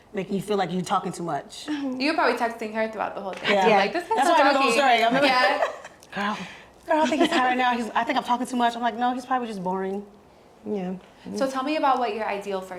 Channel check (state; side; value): identical; both; correlation 1.00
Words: Making you feel like you're talking too much. You were probably texting her throughout the whole day. Yeah. You're like, this guy's That's so why I know the whole talky. story. I remember- Yeah. Girl, I think he's high right now. I think I'm talking too much. I'm like, no, he's probably just boring. Yeah. So tell me about what your ideal